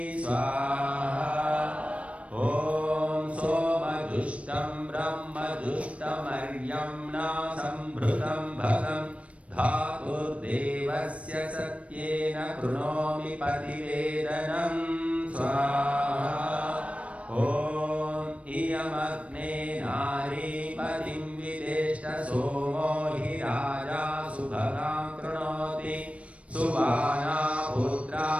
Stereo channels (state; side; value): late; left; 0.063 ms